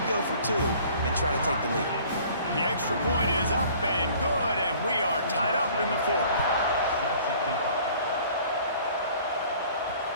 go for 2 and try to take the lead. The extra point is up and good, and we are tied up in the fourth.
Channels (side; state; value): both; inverted; correlation -0.52